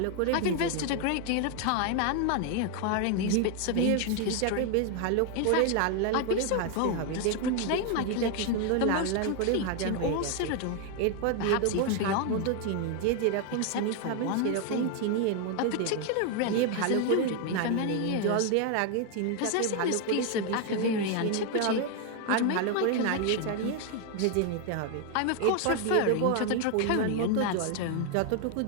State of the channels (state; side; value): different; both; correlation 0.01